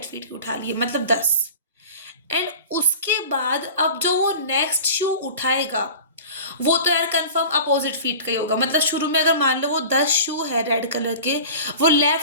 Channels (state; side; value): inverted; both; correlation -0.38